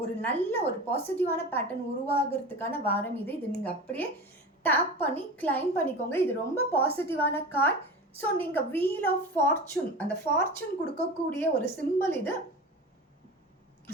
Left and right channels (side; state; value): both; normal; correlation 0.31